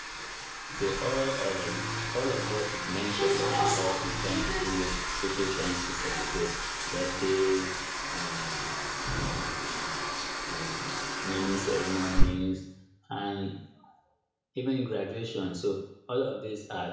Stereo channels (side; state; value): both; identical; correlation 1.00